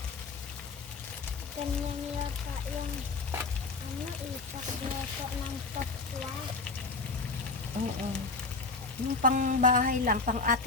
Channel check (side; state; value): right; quieter; 4.0 dB